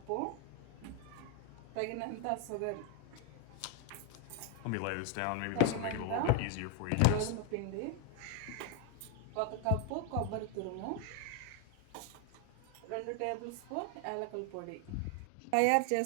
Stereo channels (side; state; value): both; different; correlation 0.01